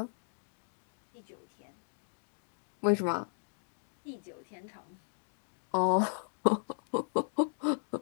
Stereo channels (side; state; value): right; silent; digital silence